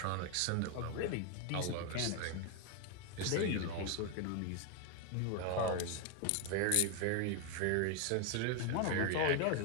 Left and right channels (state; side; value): different; both; correlation 0.01